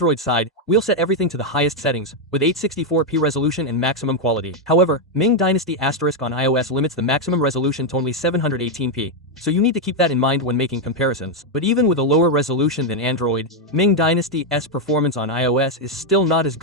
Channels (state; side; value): normal; both; correlation 0.02